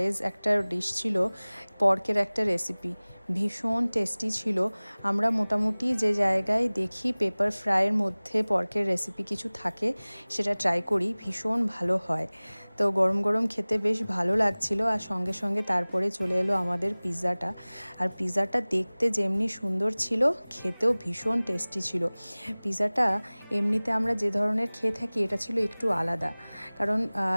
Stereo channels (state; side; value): inverted; both; correlation -1.00